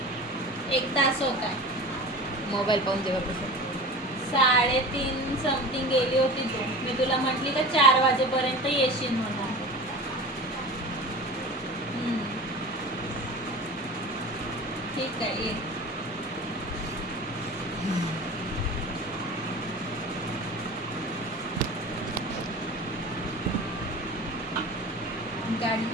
1 तास होता. मोबाईल पाहून जेव्हा 3:30 समथिंग गेली होती तू. मी तुला म्हटली का 4 वाजेपर्यंत येशील म्हणून. ठीक आहे, ये. गाडी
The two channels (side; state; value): both; normal; correlation 0.35